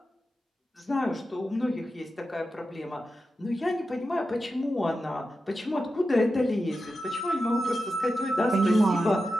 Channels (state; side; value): normal; both; correlation 0.91